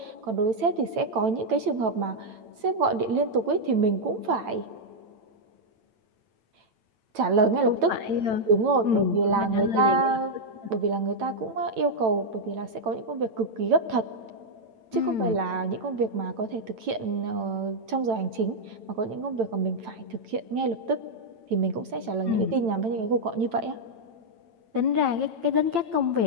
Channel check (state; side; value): late; left; 9.0 ms